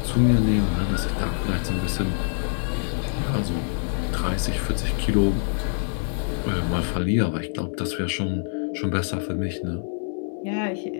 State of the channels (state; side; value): silent; right; digital silence